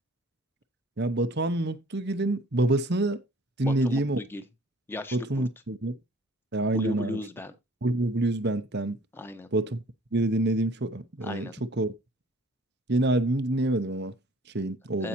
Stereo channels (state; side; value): normal; both; correlation 0.54